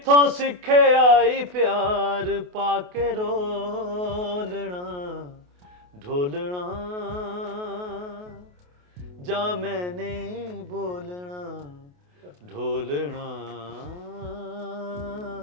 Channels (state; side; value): late; left; 28 ms